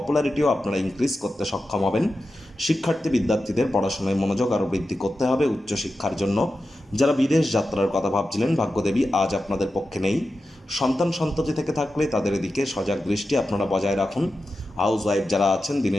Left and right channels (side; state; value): both; normal; correlation 0.91